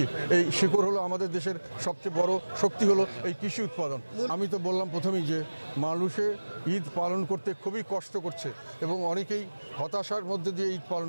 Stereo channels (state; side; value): inverted; both; correlation -1.00